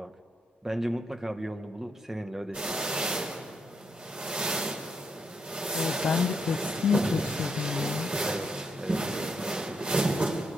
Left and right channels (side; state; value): both; normal; correlation 0.78